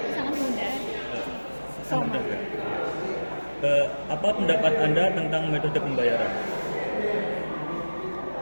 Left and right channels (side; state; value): both; inverted; correlation -1.00